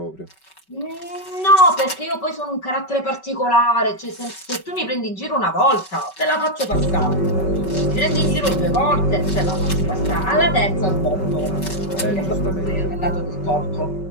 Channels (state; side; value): late; right; 5.3 ms